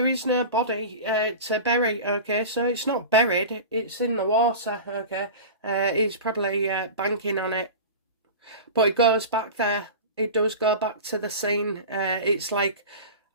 is no body to bury, okay, so it's not buried, it's in the water, okay. He's probably banking on it, but it goes back there. It does go back to the scene. It's like,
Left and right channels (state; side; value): inverted; both; correlation -0.31